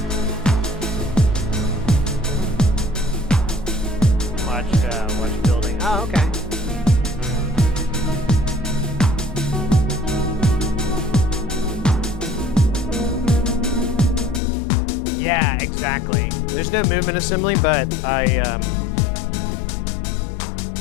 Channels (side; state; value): right; drops out; at 14.4 s